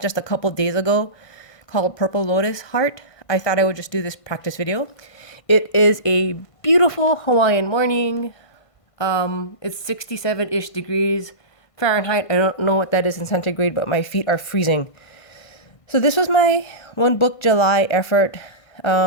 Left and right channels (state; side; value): late; right; 1.5 ms